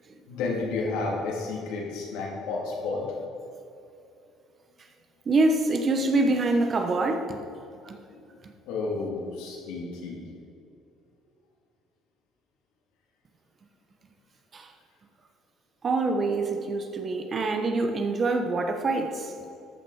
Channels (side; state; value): both; normal; correlation 0.69